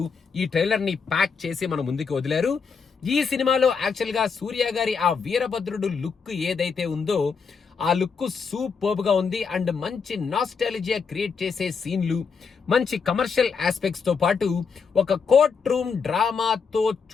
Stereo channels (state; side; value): quieter; right; 5.6 dB